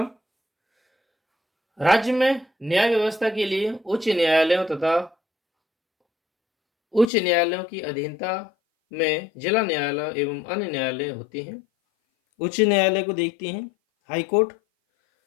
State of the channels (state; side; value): drops out; right; at 7.1 s